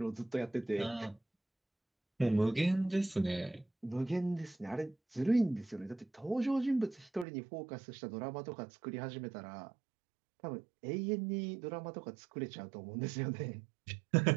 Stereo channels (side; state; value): left; drops out; at 7.2 s